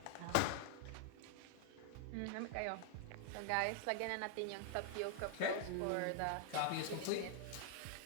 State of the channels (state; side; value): different; both; correlation 0.00